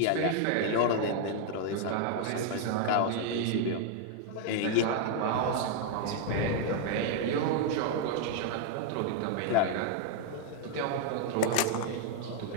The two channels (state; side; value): different; both; correlation 0.00